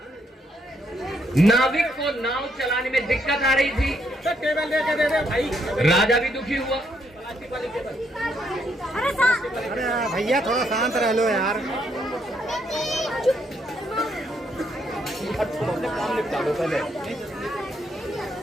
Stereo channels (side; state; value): both; normal; correlation 0.74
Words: नाविक को नाव चलाने में दिक्कत आ रही थी। टेबल लेके दे दे भाई। राजा भी दुखी हुआ। अरे भैया थोड़ा शांत रह लो यार।